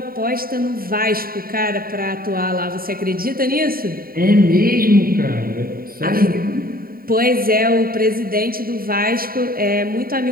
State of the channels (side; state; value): left; late; 0.43 ms